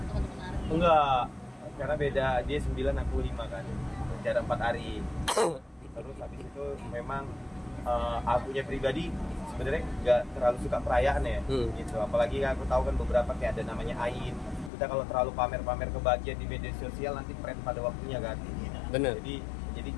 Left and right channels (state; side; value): drops out; right; at 14.7 s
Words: Arif? Enggak, karena beda. Dia 9, aku 5 kan. Jarak 4 hari. Terus habis itu memang akunya pribadi sebenarnya nggak terlalu suka perayaan ya, gitu. Apalagi aku tahu kan beberapa kayak ada namanya Ain. Kita kalau terlalu pamer-pamer kebahagiaan di media sosial nanti tren pada waktunya kan. Bener. Jadi